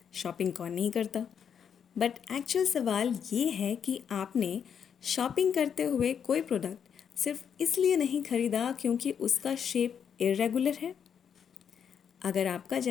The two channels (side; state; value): right; quieter; 7.7 dB